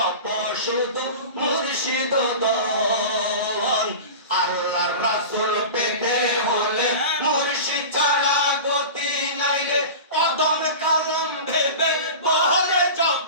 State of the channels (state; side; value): inverted; both; correlation -0.32